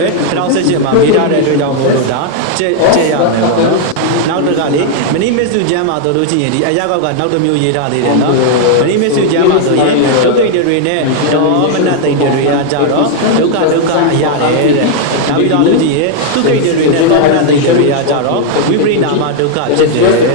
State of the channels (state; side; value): different; both; correlation 0.00